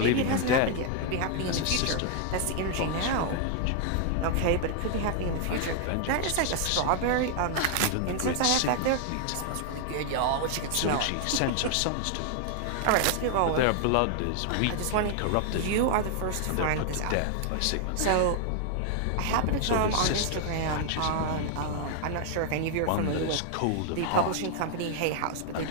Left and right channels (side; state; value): both; different; correlation 0.00